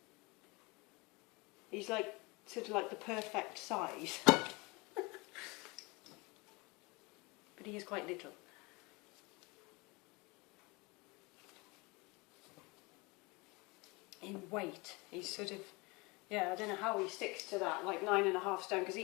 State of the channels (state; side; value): quieter; right; 26.0 dB